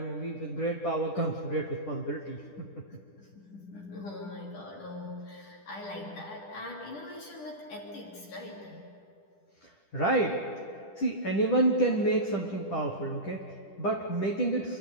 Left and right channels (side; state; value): right; late; 10 ms